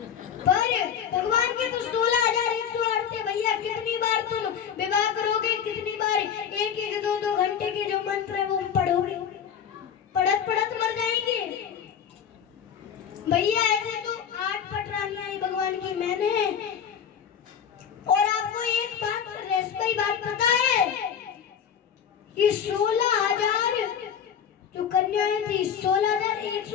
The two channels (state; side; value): quieter; right; 8.1 dB